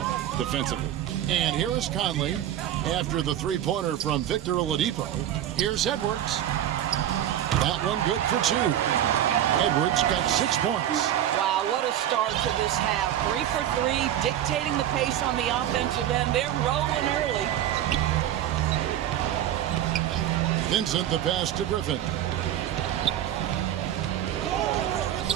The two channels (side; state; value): left; quieter; 11.4 dB